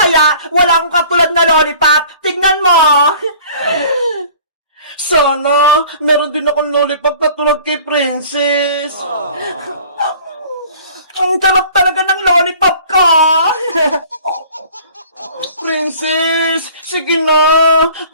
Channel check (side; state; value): both; inverted; correlation -0.49